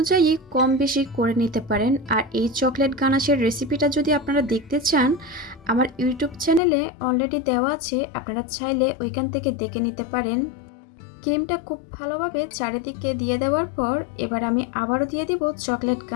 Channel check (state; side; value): drops out; right; at 6.6 s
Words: কম বেশি করে নিতে পারেন। আর এই চকলেট গানাশের রেসিপিটা যদি আপনারা দেখতে চান আমার ইউটিউব চ্যানেলে অলরেডি দেওয়া আছে, আপনারা চাইলে ওইখান থেকে দেখে নিতে পারেন। ক্রিমটা খুব ভালোভাবে চারিদিকে দিয়ে দেওয়ার পর এবার আমি আবারও দিয়ে দিব চকলেট